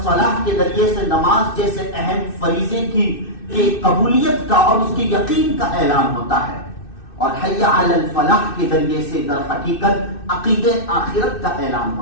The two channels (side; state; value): right; late; 2.6 ms